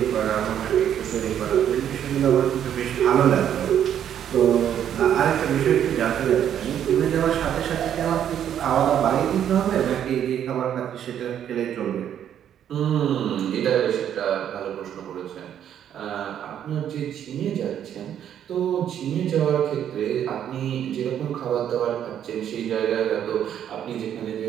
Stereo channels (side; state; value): left; quieter; 9.8 dB